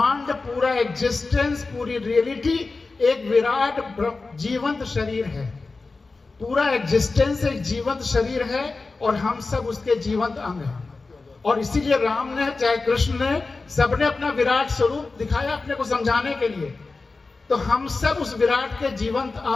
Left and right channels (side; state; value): right; quieter; 3.8 dB